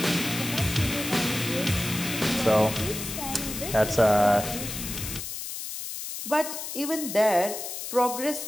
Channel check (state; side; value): noise; left; hiss, 7 dB below the sound